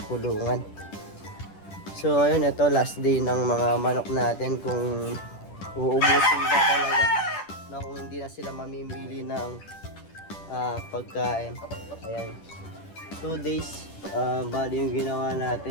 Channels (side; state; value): right; late; 10 ms